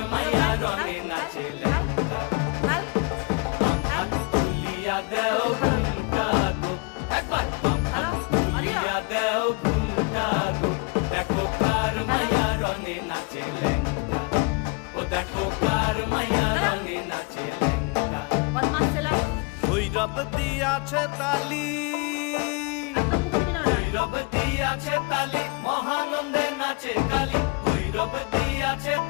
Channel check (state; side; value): quieter; right; 29.2 dB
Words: মাইয়া রনে নাচে ল্যাংটা হাত তুলিয়া দেও ঘুমটা গো একবার হাত তুলিয়া দেও ঘুমটা গো দেখো কার মাইয়া রনে নাচে ল্যাংটা ও দেখো কার মাইয়া রনে নাচে ল্যাংটা ভৈরব দিয়াছে তালি ভৈরব দিয়াছে তালি মহানন্দে নাচে কালী ভৈরব দিয়াছে